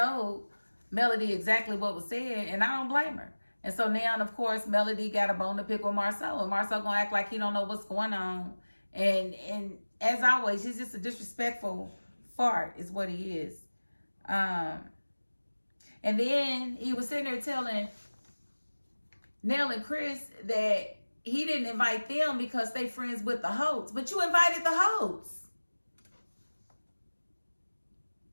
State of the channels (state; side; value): inverted; both; correlation -1.00